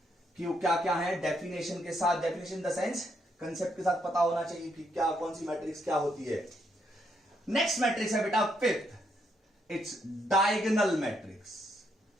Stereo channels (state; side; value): normal; both; correlation 0.76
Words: कि वो क्या क्या है. डेफिनेशन के साथ, डेफिनेशन द सेंस कंसेप्ट के साथ पता होना चाहिए कि क्या कौन सी मैट्रिक्स क्या होती है. नेक्स्ट मैट्रिक्स है बेटा fifth, its diagonal matrix.